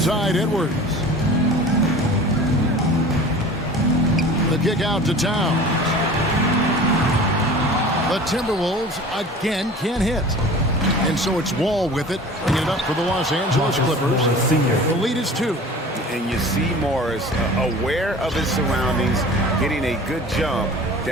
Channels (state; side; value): normal; both; correlation 0.41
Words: Edwards. The kick out to Towns. The Timberwolves again can't hit. And so it's Wall with it, bringing it up for the Los Angeles Clippers. The lead is 2. And you see Morris aware of his surroundings, getting a good jump